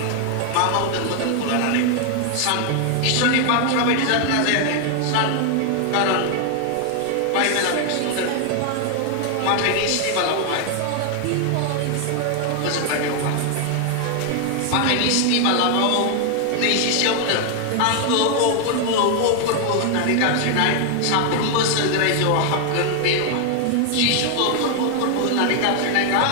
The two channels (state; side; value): different; both; correlation 0.00